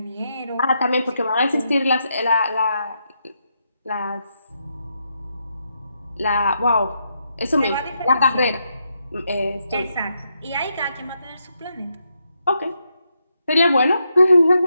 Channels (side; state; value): both; inverted; correlation -0.81